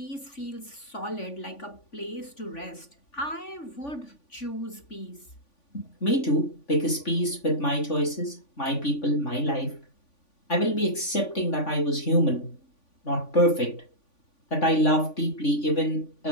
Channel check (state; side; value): late; right; 3.5 ms